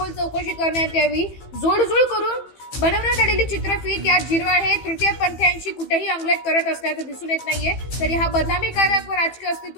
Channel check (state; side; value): late; right; 15 ms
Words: चौकशी करण्यात यावी। जोडजूळ करून बनवण्यात आलेली चित्रफित या झिरवाळ हे तृतीयपंथीयांशी कुठेही अंगलट करत असल्याचं दिसून येत नाहीये। तरी हा बदनामीकारक व राजकीय